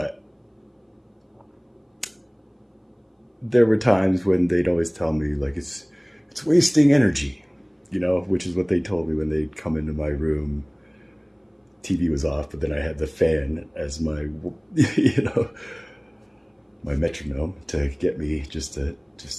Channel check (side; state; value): both; identical; correlation 1.00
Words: there were times when they'd always tell me like, it's wasting energy, which is what they told me when they'd come into my room. TV was off, but then I had the fan as my, my metronome to get me just